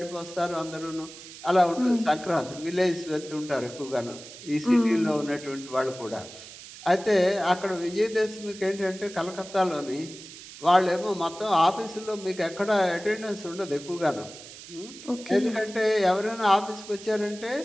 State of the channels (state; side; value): noise; right; hiss, 16 dB below the sound